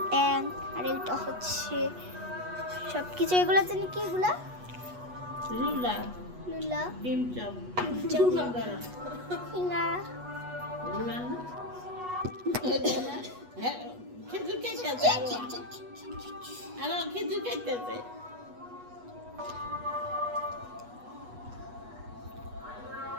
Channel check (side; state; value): left; late; 8.2 ms